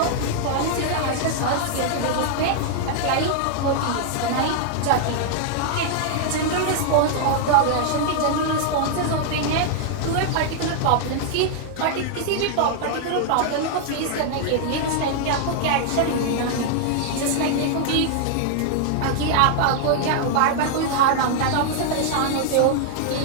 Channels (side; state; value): both; different; correlation -0.01